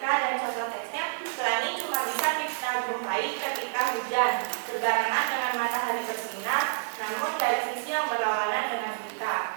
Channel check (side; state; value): left; silent; digital silence